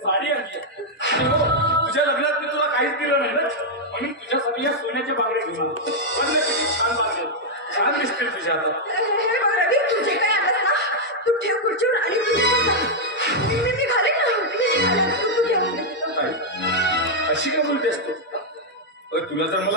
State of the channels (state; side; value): normal; both; correlation -0.03